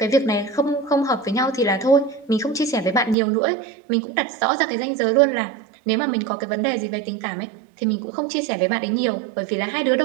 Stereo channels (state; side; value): drops out; left; at 3.2 s